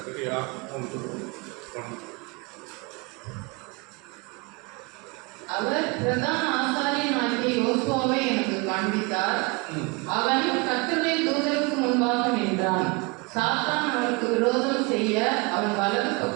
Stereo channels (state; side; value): quieter; left; 28.0 dB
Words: 3:1. அவர் பிரதான ஆசாரியனாகிய யோசுவாவை எனக்கு காண்பித்தார். அவன் கர்த்தருடைய தூதருக்கு முன்பாக நின்றான். சாத்தான் அவனுக்கு விரோதம் செய்ய அவன் வலது